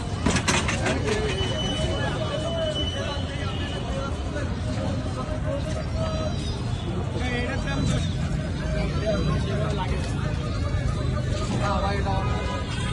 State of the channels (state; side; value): identical; both; correlation 1.00